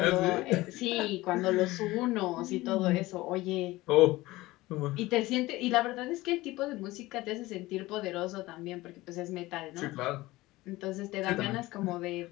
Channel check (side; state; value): right; quieter; 19.0 dB